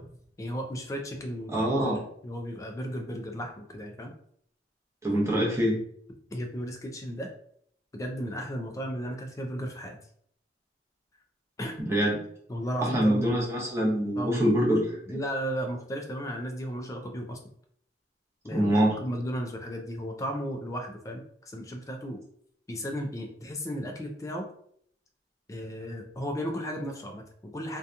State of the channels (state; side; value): normal; both; correlation 0.73